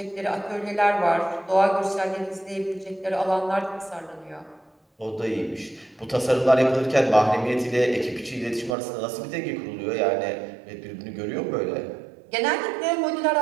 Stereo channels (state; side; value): drops out; left; at 8.8 s